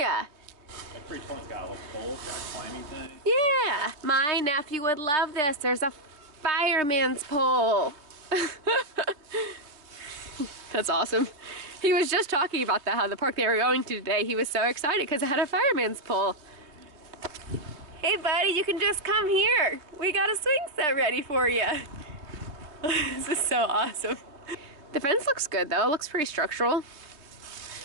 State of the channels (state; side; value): late; left; 3.3 ms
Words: That pretty one's got a little pole, got a climbing thing. Yeah. My nephew would love this. There's a fireman's pole. That's awesome. He was just talking about that, how the park they were going to today, he was so excited because it had a fireman's pole. Hey buddy, you can just come here. We got a swing set ready for you. This is so awesome. The fence looks good though, it looks pretty structural.